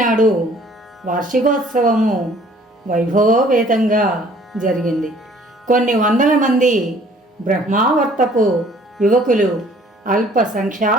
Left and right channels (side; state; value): both; normal; correlation 0.56